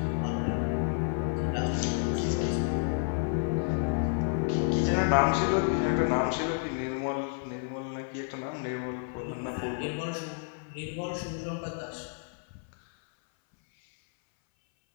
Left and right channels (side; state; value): right; silent; 58 dB below the other